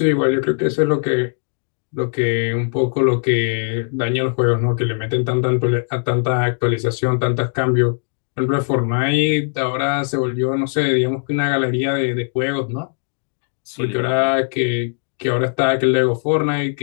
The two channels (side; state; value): right; silent; digital silence